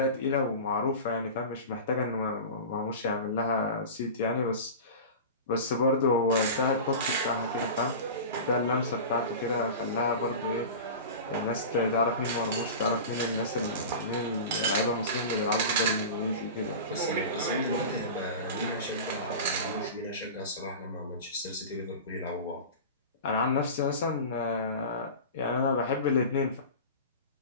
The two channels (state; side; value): inverted; both; correlation -0.31